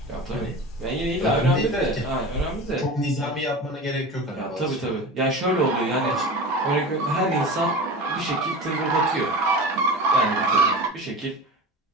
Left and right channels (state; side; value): normal; both; correlation 0.31